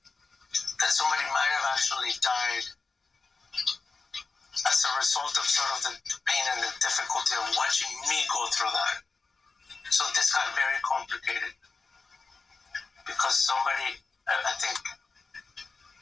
that somebody might have actually died as a result of sort of the pain and the difficulty of watching me go through that. So this got very complicated because somebody, I think,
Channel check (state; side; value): quieter; right; 4.2 dB